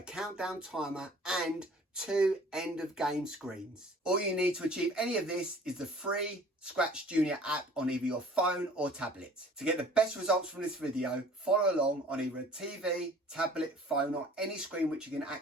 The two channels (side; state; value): both; normal; correlation 0.50